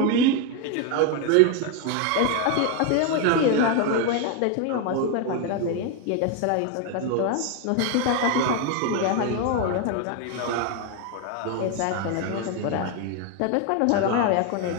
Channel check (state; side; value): different; both; correlation 0.01